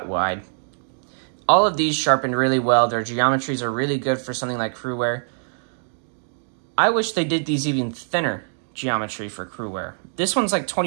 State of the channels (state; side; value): silent; left; digital silence